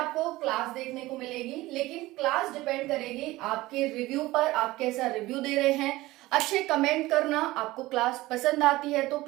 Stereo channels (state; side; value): quieter; left; 18.5 dB